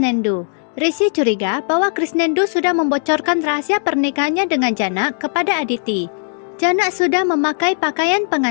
Rishi curiga bahwa Krisnendu sudah membocorkan rahasia pernikahannya dengan Jana kepada Aditi. Jana sudah memakai pakaian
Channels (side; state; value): right; silent; digital silence